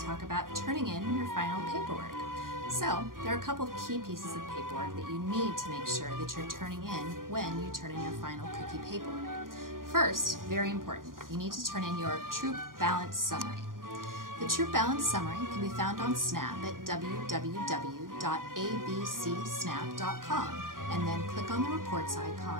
talk about turning in your final paperwork. So there are a couple of key pieces of paperwork that you need to make sure that you're turning in when you turn in your final cookie paperwork. First, very important, you need to turn in your Troop Balance Summary. The Troop Balance Summary can be found on Snap at www.abcsnap.com and then click on the reports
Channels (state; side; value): late; left; 0.90 ms